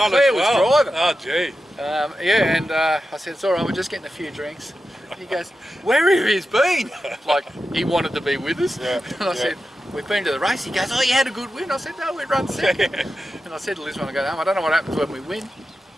Claire as well. was driving. Oh, gee. Yeah, and I said, "It's all right. We're just getting a few drinks." And he goes, "Where have he been?" Like he wanted to be with us. Yeah, And I said, we've been to the race. He goes, oh, you had a good win. I said, no, we run second. And I said to Liz when I got home, I don't know what happens when we win.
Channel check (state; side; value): normal; both; correlation 0.91